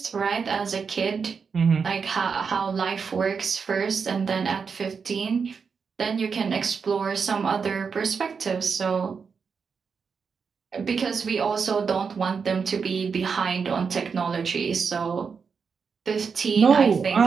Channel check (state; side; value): quieter; left; 5.7 dB